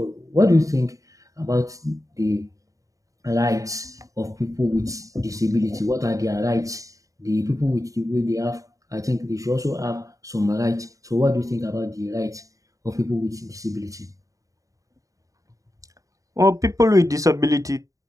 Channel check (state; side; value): late; left; 0.16 ms